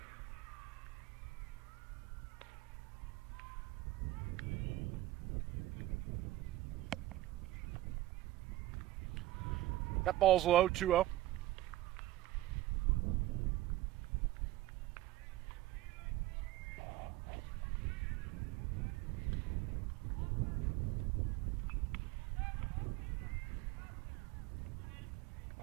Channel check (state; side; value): quieter; left; 16.0 dB